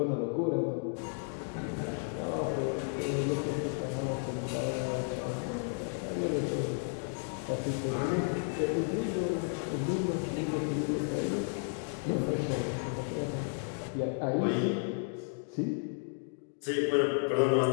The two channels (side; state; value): right; silent; 56 dB below the other